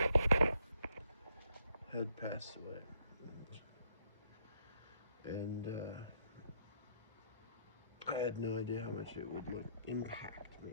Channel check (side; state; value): both; inverted; correlation -0.71